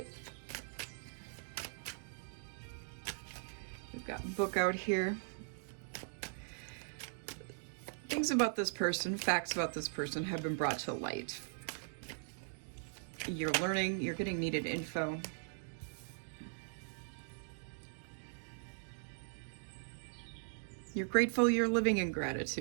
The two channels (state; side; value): silent; left; digital silence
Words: We've got book out here. Things about this person, facts about this person have been brought to light. You're learning, you're getting needed info. You're grateful, you're living in